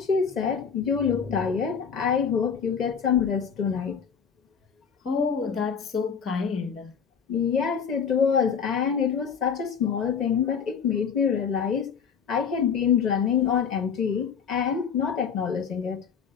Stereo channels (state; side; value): quieter; right; 6.7 dB